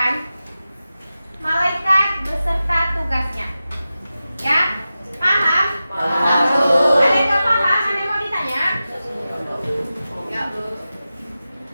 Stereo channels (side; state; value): both; inverted; correlation -0.94